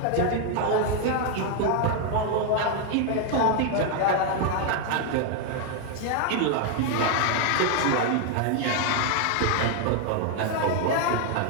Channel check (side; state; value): both; different; correlation 0.00